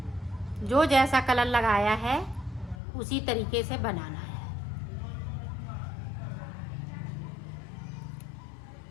जो जैसा कलर लगाया है उसी तरीके से बनाना है।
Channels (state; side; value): drops out; right; at 2.8 s